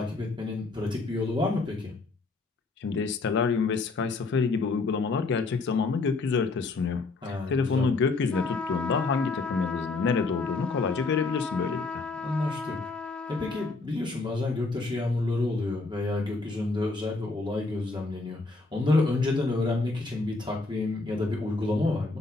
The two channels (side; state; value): right; quieter; 3.7 dB